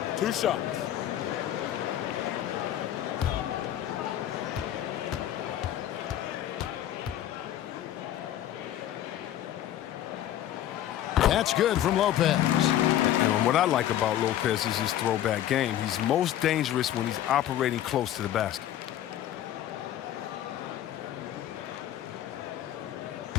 2 shots. That's good from Lopez. And what I like about Lopez is his throwback game. He's most dangerous when he's operating close to the basket.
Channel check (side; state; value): right; quieter; 12.0 dB